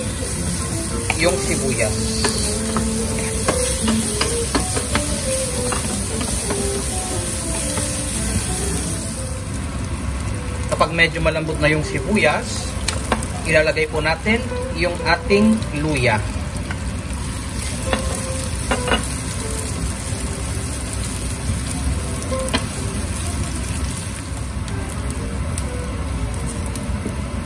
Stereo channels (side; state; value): both; identical; correlation 1.00